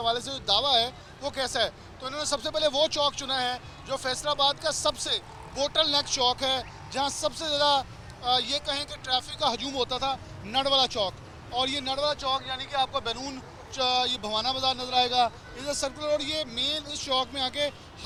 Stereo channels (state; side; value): identical; both; correlation 1.00